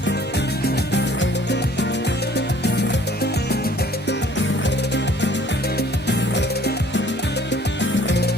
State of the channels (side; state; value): both; normal; correlation 0.55